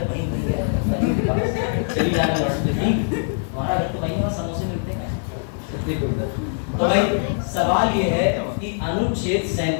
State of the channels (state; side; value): silent; right; 64 dB below the other